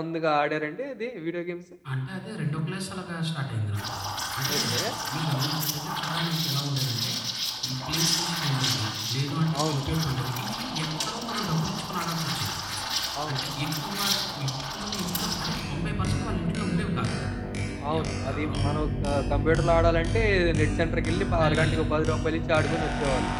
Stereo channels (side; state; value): both; identical; correlation 1.00